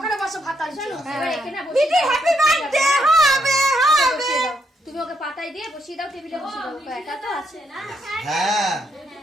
বসো ভাত আছে এবার এখানে মিটি হ্যাপি বার্থডে হবে হবে তুমি ওকে পাতায় দিয়ে বসিয়ে দাও টেবিলে বসিয়ে দাও ওকে একা তো আছে না হ্যাঁ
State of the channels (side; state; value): both; normal; correlation 0.76